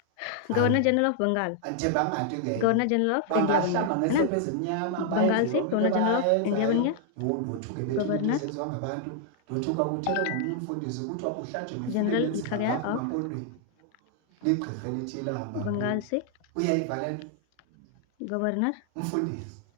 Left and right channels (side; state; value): both; different; correlation 0.00